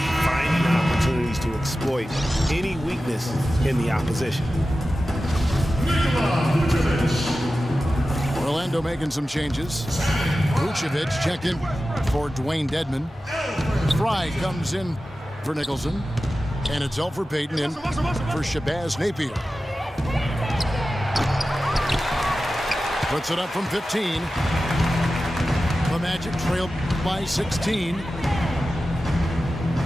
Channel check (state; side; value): normal; both; correlation 0.94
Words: finding opportunities to exploit any weakness in the opposition. Orlando making some changes. Vucevic checked in for Dwayne Dedmon. Fry comes in for Nicholson. And it's Elfrid Payton in for Shabazz Napier. Puts it up from 15. The Magic trail by 16.